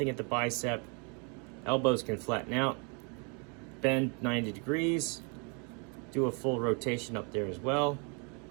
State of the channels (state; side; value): quieter; left; 35.7 dB